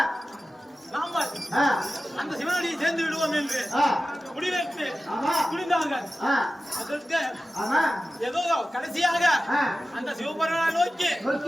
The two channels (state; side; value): normal; both; correlation 0.94